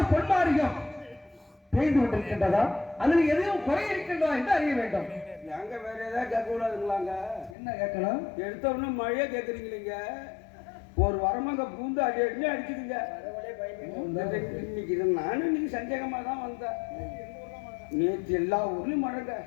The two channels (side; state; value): right; drops out; at 7.6 s